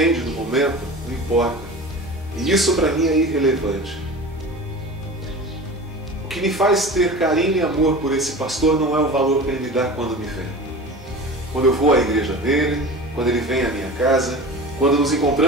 do momento, não importa. E isso para mim é irrelevante. O que me faz ter carinho e amor por esse pastor não é o valor que ele me dá quando me vê. Quando eu vou à igreja dele, quando ele vem à minha casa, quando nos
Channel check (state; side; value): normal; both; correlation 0.34